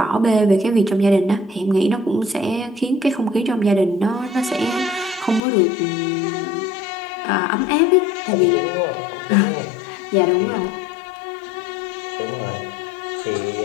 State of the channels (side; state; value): right; drops out; at 5.4 s